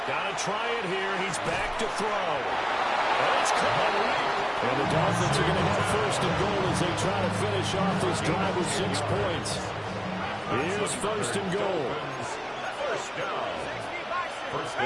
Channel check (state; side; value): identical; both; correlation 1.00